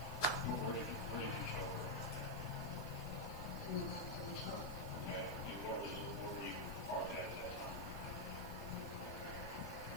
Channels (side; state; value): right; noise; hiss, 18 dB below the sound